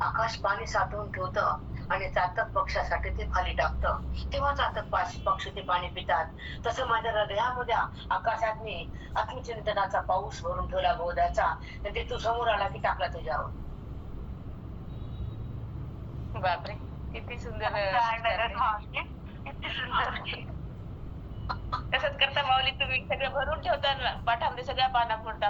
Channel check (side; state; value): both; identical; correlation 1.00